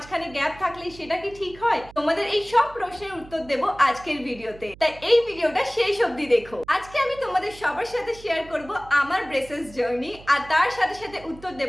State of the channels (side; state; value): right; noise; hum, 20 dB below the sound